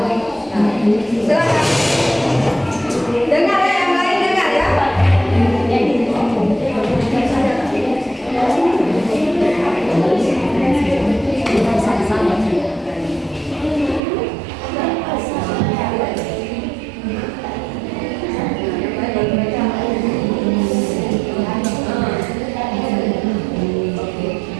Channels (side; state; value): left; drops out; at 14.0 s